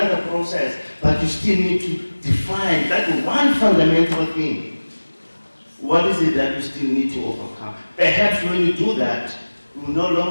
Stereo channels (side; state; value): both; inverted; correlation -1.00